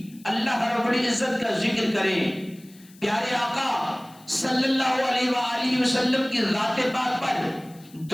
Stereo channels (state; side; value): noise; left; hiss, 25 dB below the sound